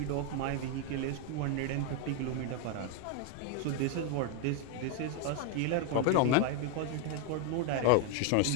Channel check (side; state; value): both; different; correlation 0.01